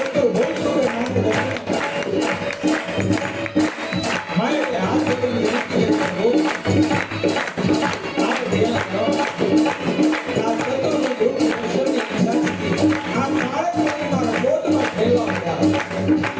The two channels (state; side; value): identical; both; correlation 1.00